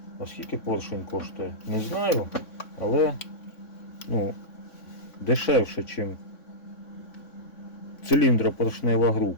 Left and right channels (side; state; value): right; late; 3.6 ms